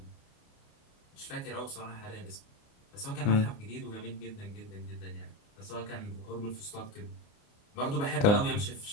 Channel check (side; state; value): right; late; 28 ms